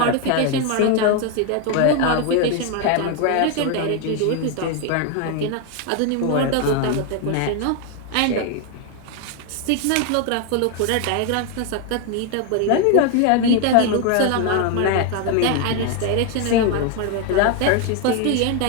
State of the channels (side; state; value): both; different; correlation 0.01